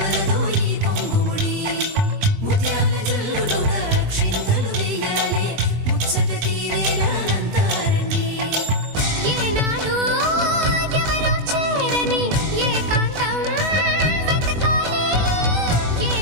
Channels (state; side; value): late; left; 20 ms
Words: ఈ పొంగుముడి ముత్యాల జల్లులుగా క్షింతలు వేయాలి ముచ్చట తీరేలా అంతారండి. ఏనాడు ఎవరో చేరని ఏకాంతం వెతకాలి. ఏ